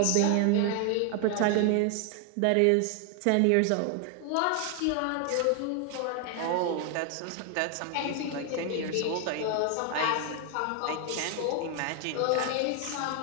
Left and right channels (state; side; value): different; both; correlation 0.00